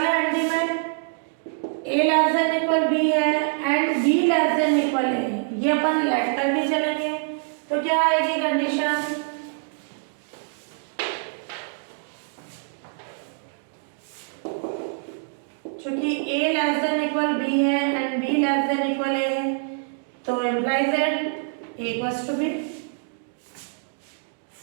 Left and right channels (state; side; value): silent; left; digital silence